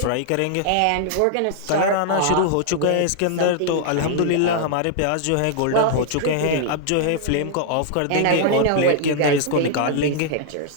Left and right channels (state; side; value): different; both; correlation -0.01